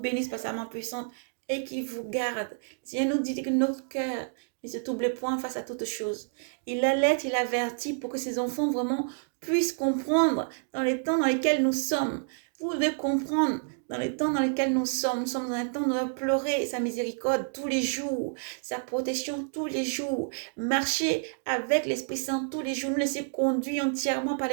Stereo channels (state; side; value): silent; left; digital silence